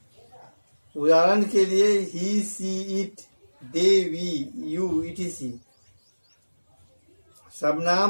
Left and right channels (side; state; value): both; inverted; correlation -1.00